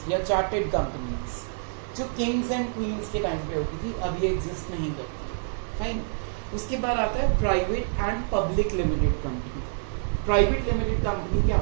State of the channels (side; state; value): left; silent; 60 dB below the other